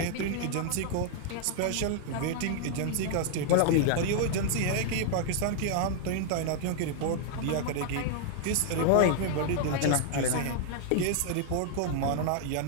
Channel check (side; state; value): both; different; correlation 0.00